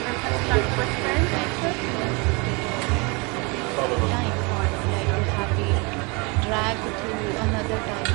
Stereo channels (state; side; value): quieter; left; 29.3 dB